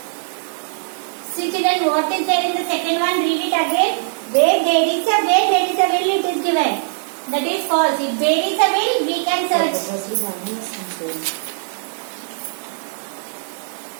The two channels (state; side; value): silent; left; digital silence